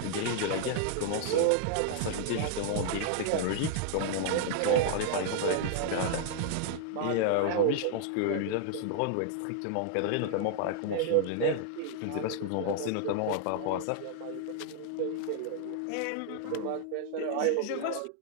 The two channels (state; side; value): different; both; correlation -0.01